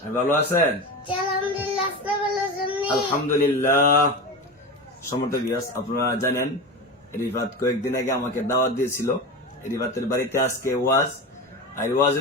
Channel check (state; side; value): normal; both; correlation 0.24